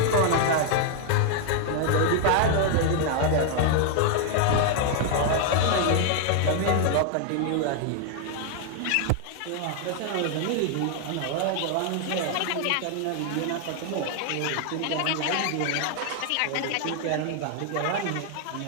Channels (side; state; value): both; different; correlation 0.00